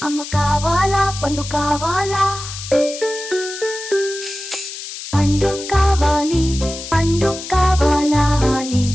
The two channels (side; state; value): left; noise; hiss, 10 dB below the sound